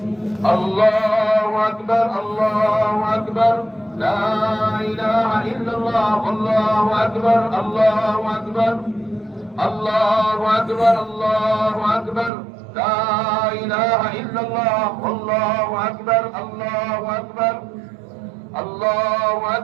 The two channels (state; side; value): drops out; left; at 12.3 s